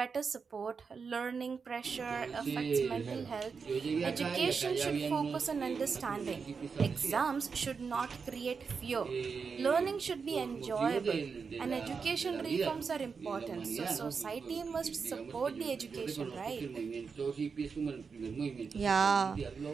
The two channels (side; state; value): left; quieter; 5.5 dB